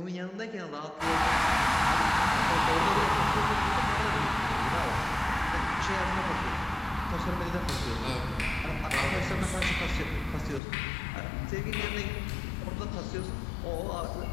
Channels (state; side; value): drops out; right; at 10.6 s